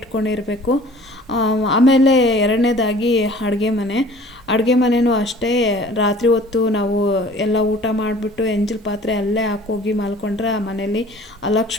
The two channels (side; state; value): both; normal; correlation 0.49